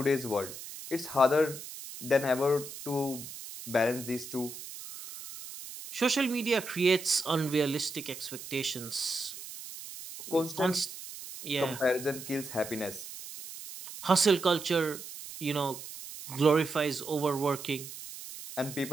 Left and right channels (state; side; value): noise; right; hiss, 12 dB below the sound